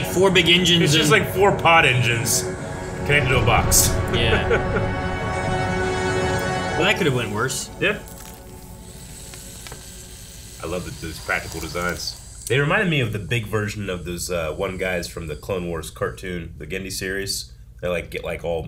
4 big engines. It's just and- like 4 pod engines connected to a box. Yeah. Well, that could have went worse. Yeah. I love those practical designs. They reminded me of the big version of those one guys from the Clone Wars cartoon, the Gendy series. They like get like all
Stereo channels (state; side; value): identical; both; correlation 1.00